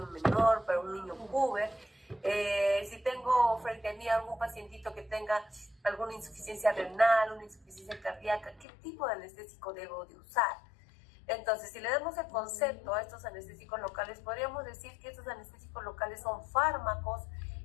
menor, para un niño puber. Si tengo frente a mí algún pacientito que tenga alguna insuficiencia renal, una insuficiencia cardíaca, ¿qué tipo de anestésico debo de usar? Entonces, si le damos el concepto a estos anestésicos locales, podríamos decir que estos anestésicos locales son fármacos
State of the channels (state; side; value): drops out; right; at 8.7 s